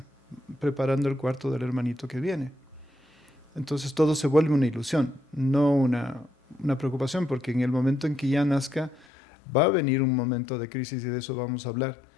preparando el cuarto del hermanito que viene. Entonces todo se vuelve una ilusión, no una preocupación, porque en el momento en que ya nazca va a venir un momento de crisis, y de eso vamos a hablar,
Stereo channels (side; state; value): right; drops out; at 9.1 s